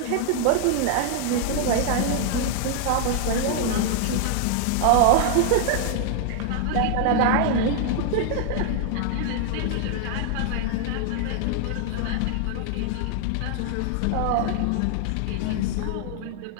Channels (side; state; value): both; different; correlation 0.00